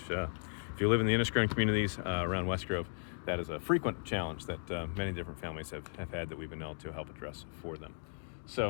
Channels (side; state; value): right; silent; digital silence